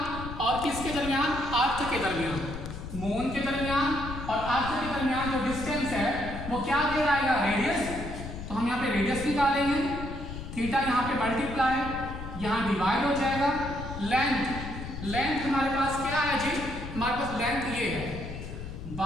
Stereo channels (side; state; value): left; noise; rumble, 9 dB below the sound